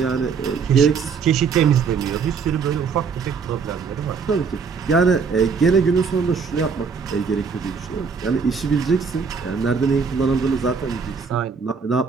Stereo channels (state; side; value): quieter; left; 5.6 dB